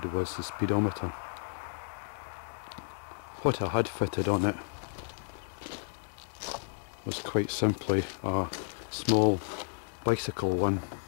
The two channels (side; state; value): right; silent; digital silence